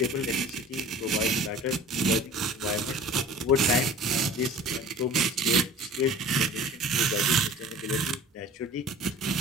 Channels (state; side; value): normal; both; correlation 0.43